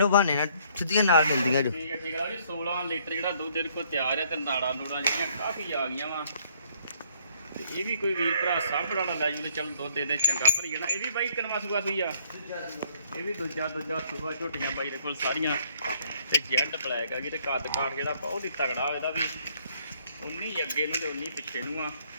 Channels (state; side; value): inverted; both; correlation -0.64